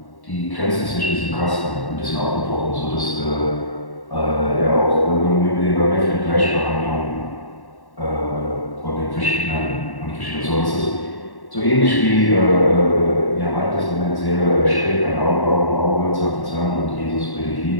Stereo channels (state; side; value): late; right; 1.1 ms